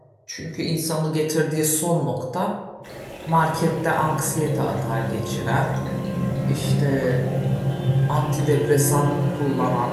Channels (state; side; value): identical; both; correlation 1.00